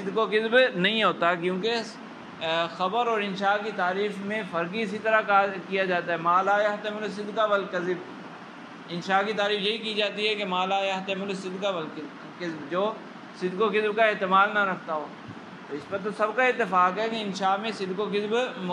و کذب نہیں ہوتا. کیونکہ خبر اور انشاء کی تعریف میں فرق ہی اسی طرح کیا جاتا ہے، ما لا يحتمل الصدق والکذب. انشاء کی تعریف یہی کی جاتی ہے کہ ما لا يحتمل الصدق والکذب، جو صدق و کذب کا احتمال نہ رکھتا ہو. تو اس پر تو سب کا اتفاق ہے کہ انشاء میں صدق و کذب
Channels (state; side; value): identical; both; correlation 1.00